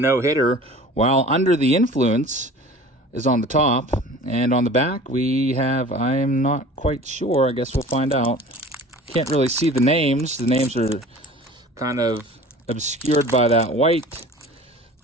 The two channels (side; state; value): both; normal; correlation 0.43